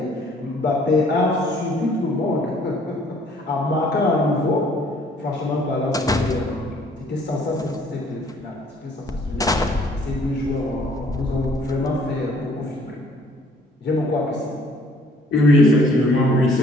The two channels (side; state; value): both; normal; correlation 0.59